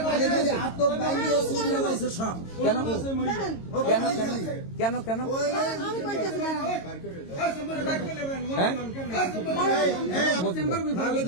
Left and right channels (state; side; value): late; right; 22 ms